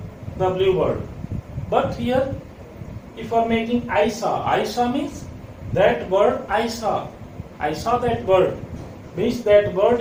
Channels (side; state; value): both; identical; correlation 1.00